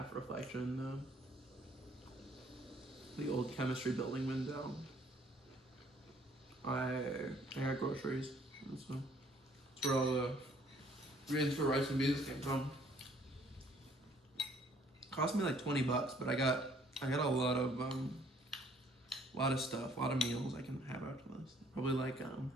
reflection, the old chemistry building window, I got groceries. That's where all the greens for rice and beans came from. Cost me like $20, but I got a lot of stuff, a lot of meals I can have after this. Probably like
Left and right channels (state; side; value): normal; both; correlation 0.62